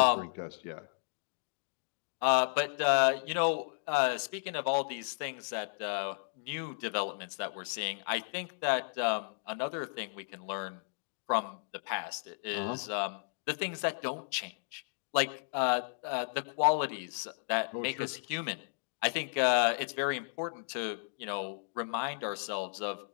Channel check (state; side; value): silent; right; digital silence